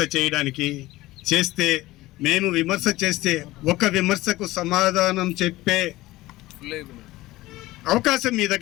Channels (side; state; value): right; quieter; 18.0 dB